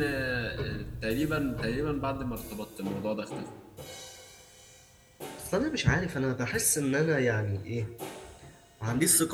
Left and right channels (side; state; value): both; identical; correlation 1.00